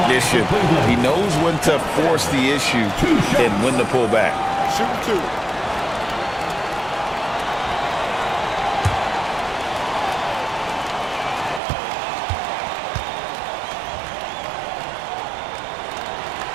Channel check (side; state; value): left; drops out; at 11.6 s